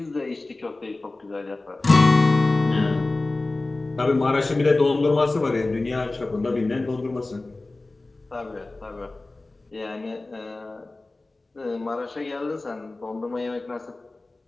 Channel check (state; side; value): quieter; right; 3.1 dB